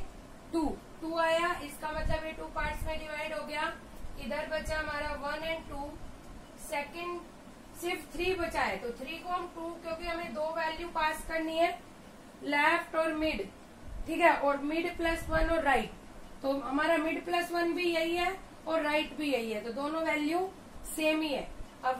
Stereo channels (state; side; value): identical; both; correlation 1.00